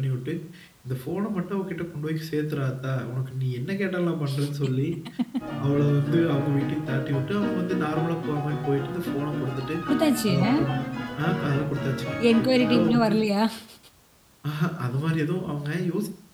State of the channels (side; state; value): both; identical; correlation 1.00